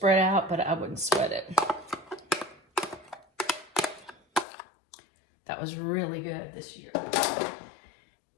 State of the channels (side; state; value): right; drops out; at 4.5 s